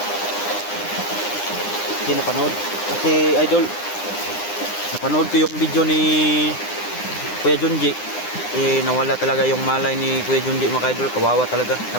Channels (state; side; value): late; right; 9.8 ms